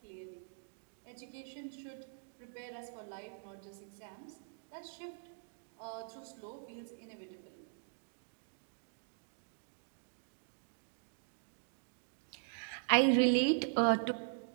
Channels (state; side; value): silent; left; digital silence